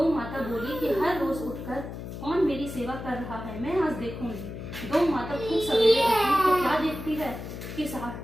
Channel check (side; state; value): left; noise; hum, 9 dB below the sound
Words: माता बोली कि हर रोज उठकर कौन मेरी सेवा कर रहा है, मैं आज देखूंगी। गौ माता खूब सवेरे उठी तो क्या देखती है कि